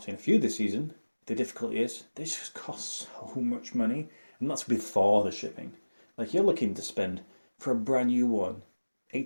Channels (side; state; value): both; inverted; correlation -1.00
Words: seen a few this season. The difficulty is, they just cost so much money, and that's before the shipping. Like, you're looking to spend, for a brand new one,